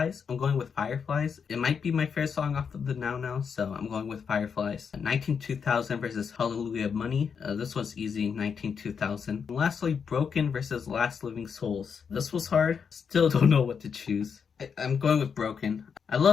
I'm going with Fireflies. It might be my favorite song off of the Now, so I'm going with Fireflies. 19-2000 versus Hallelujah Money. This was easy, 19-2000. Lastly, Broken versus Last Living Souls. This was hard. Still don't know what to choose. I'm going with Broken. I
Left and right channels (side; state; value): right; quieter; 6.5 dB